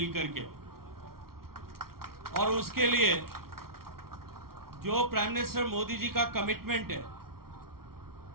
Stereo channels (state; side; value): late; left; 0.94 ms